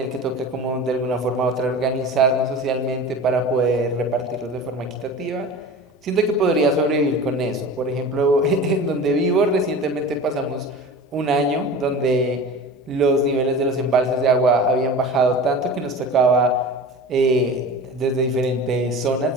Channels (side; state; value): both; normal; correlation 0.35